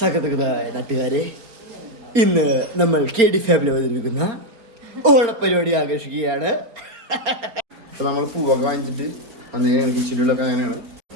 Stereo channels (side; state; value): left; late; 4.3 ms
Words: നാട്ടുകാരെ, ഇന്ന് നമ്മൾ KD ഫാമിലി അവതരിപ്പിക്കുന്ന ഓണപ്പരിപാടി ആഘോഷിക്കുകയാണ്. അപ്പോൾ നമ്മൾ പൂവൊക്കെ വാങ്ങിച്ചിട്ട് വന്നേക്കാണ്. കിച്ചണിലൊക്കെ അങ്ങനെയാണ്.